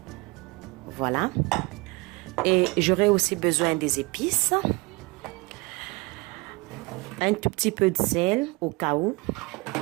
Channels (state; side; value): quieter; left; 26.0 dB